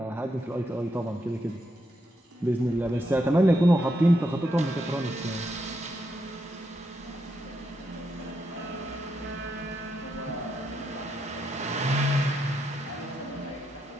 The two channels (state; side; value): normal; both; correlation 0.81